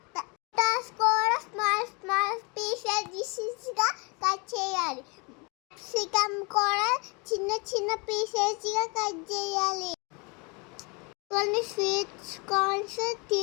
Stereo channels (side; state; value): right; quieter; 30.6 dB